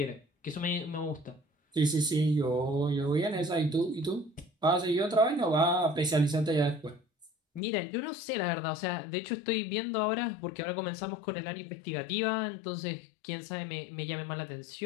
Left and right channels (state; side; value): drops out; right; at 7.6 s